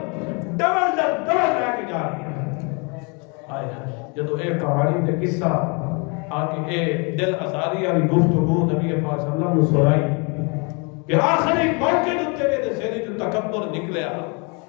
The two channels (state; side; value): quieter; right; 33.0 dB